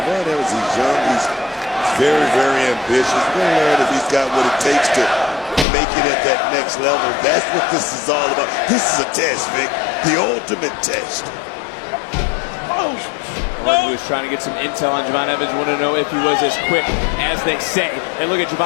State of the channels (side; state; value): right; drops out; at 5.7 s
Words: Evans, he's young, he's very, very ambitious. We're going to learn if he's got what it takes to make it at that next level. That's what this is all about. This is a test, Vic. The ultimate test. Orton was trying to get some intel on Javon Evans, wanted to know if he was as quick as they say. And look at